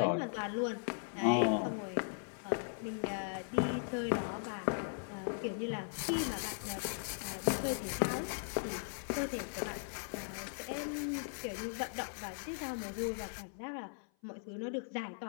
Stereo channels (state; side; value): silent; right; 52 dB below the other